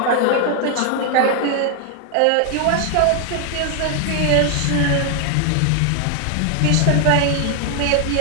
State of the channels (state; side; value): different; both; correlation 0.00